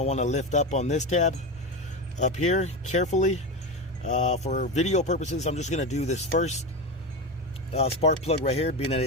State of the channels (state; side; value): normal; both; correlation 0.19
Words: want to lift up on this tab up here carefully. For video purposes, I'm just going to do this first spark plug right here, being that